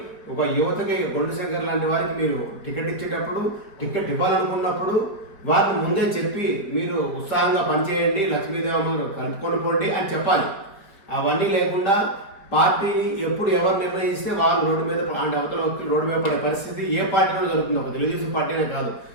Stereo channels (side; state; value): right; late; 4.9 ms